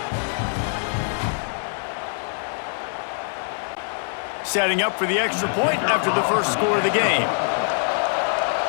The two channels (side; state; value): right; silent; 63 dB below the other